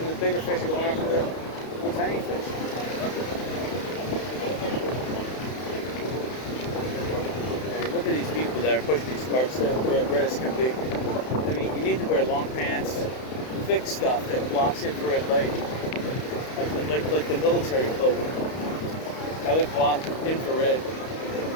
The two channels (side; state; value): right; late; 31 ms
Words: the bigger fish are going after the little tiny fish. Look at these people that are pushing these carts. They're red as can be. I mean, you need to wear long pants, thick stuff that blocks infrared light, like the military cloak. That would block infrared.